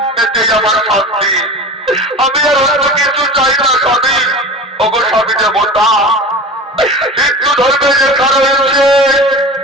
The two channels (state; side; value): normal; both; correlation 0.33